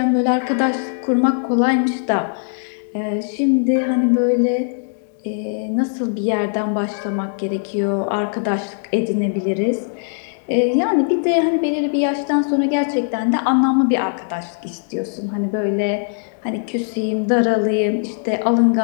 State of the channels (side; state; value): right; silent; digital silence